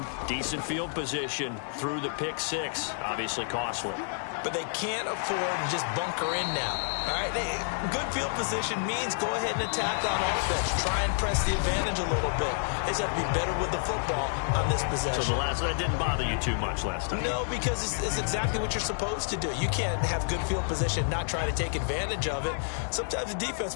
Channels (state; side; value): silent; right; digital silence